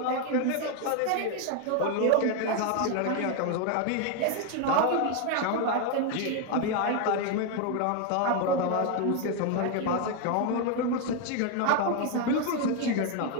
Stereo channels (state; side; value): different; both; correlation 0.01